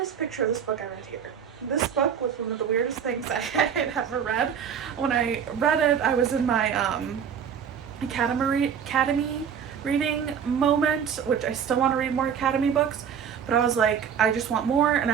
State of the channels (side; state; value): left; quieter; 7.7 dB